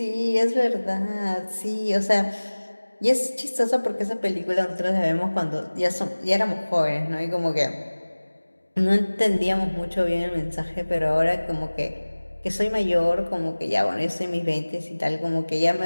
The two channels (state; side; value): inverted; both; correlation -1.00